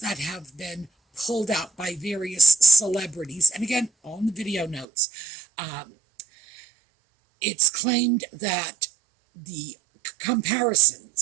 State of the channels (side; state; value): left; drops out; at 4.9 s